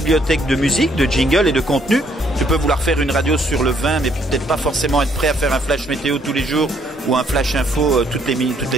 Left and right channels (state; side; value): normal; both; correlation 0.68